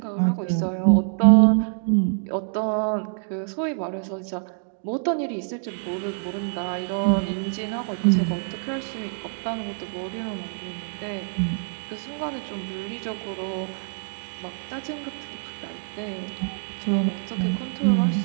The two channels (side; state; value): left; silent; digital silence